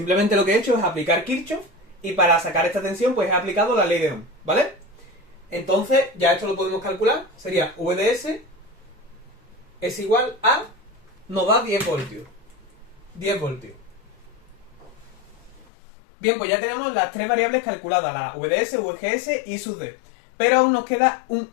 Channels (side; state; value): right; drops out; at 15.7 s